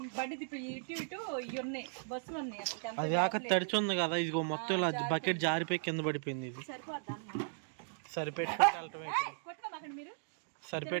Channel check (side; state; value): left; silent; digital silence